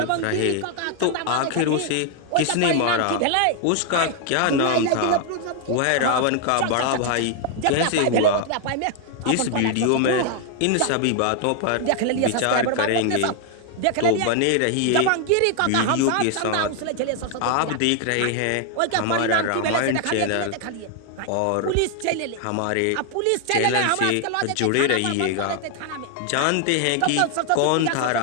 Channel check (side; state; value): both; different; correlation 0.00